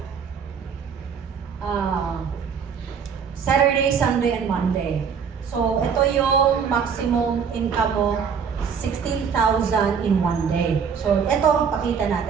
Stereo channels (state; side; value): quieter; left; 6.6 dB